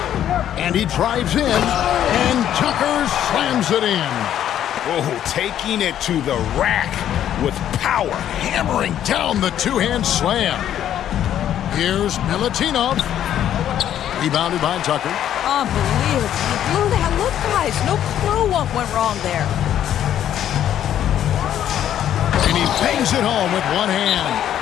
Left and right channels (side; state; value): right; quieter; 10.8 dB